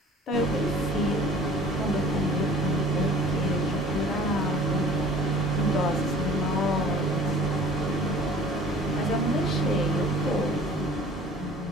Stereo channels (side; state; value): both; normal; correlation 0.48